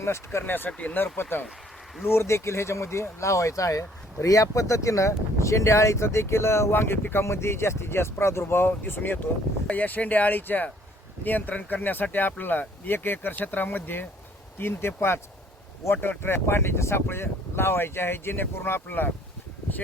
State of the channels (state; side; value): normal; both; correlation 0.60